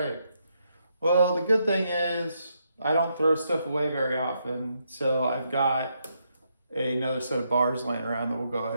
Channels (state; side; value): inverted; both; correlation -0.78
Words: well, the good thing is I don't throw stuff away very often, so I've got another set of bars laying around that we'll go